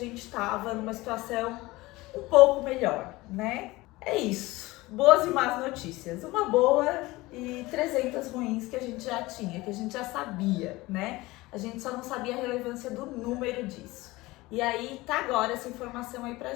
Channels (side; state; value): right; quieter; 20.4 dB